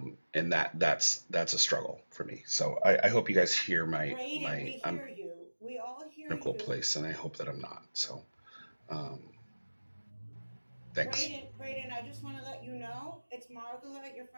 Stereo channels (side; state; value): both; inverted; correlation -1.00